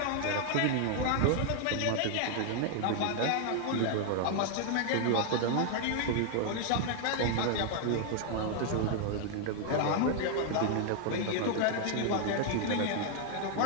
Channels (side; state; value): both; different; correlation 0.00